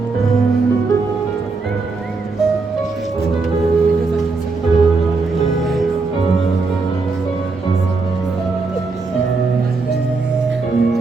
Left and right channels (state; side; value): quieter; left; 4.0 dB